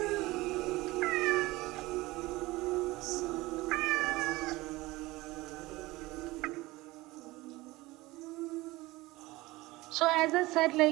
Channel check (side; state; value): left; quieter; 20.1 dB